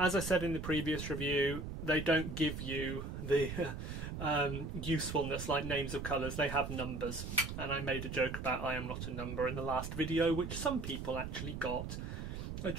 I said in the previous review, they don't give you the usefulness like names of colours. They have numbers, and I made a joke about I am not a number in the last video, which some people actually got. I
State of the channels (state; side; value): noise; right; rumble, 6 dB below the sound